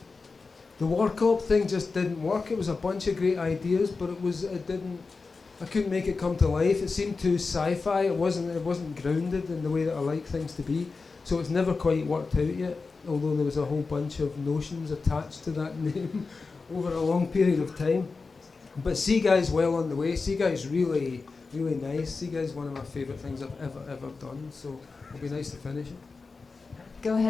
The War Cop thing just didn't work. It was a bunch of great ideas, but it didn't. I couldn't make it come to life. It seemed too sci-fi. It wasn't grounded in the way that I like things to be. So it's never quite worked out yet. although there was a whole bunch of notions attached to that name over a long period of time. But Sea Guy's well on the way. Sea Guy's really, really nice. Sea Guy's one of my favourite things I've ever done, so it'll be nice to finish it. Go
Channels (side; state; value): right; quieter; 4.3 dB